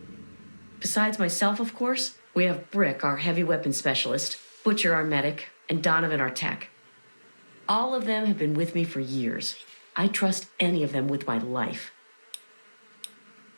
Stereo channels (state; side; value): inverted; both; correlation -1.00